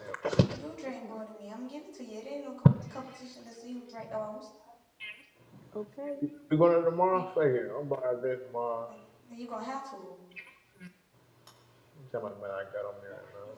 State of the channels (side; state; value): both; identical; correlation 1.00